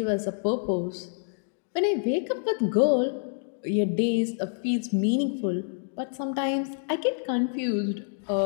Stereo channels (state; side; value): silent; right; digital silence